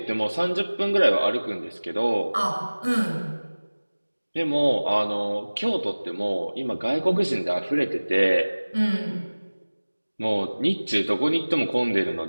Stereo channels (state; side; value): inverted; both; correlation -1.00